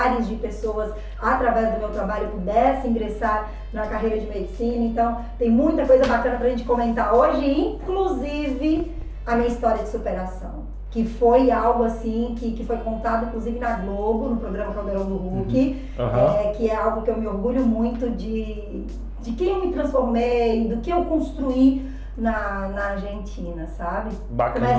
de pessoas, através do meu trabalho, pudessem ingressar na carreira de medicina. Então, tem muita coisa bacana para a gente comentar hoje, inclusive a minha história de superação. Que foi algo assim, que foi contado inclusive na Globo, no programa Caldeirão do Hulk, que é algo que eu me orgulho muito de quem eu me transformei, do que eu construí na Argentina, sabe? Bacana.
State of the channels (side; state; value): both; identical; correlation 1.00